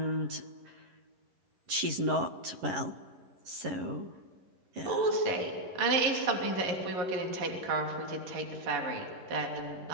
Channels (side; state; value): left; late; 11 ms